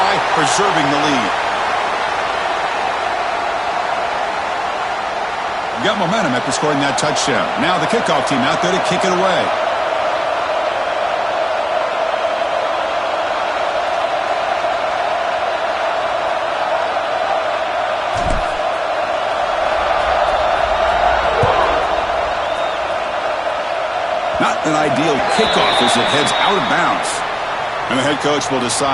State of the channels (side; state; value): both; identical; correlation 1.00